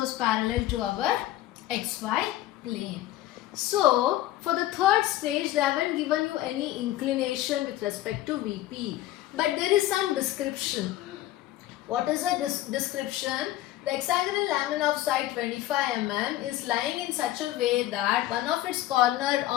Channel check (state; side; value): quieter; right; 14.9 dB